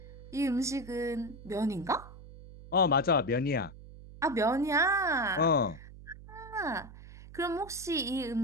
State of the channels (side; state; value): right; noise; hum, 17 dB below the sound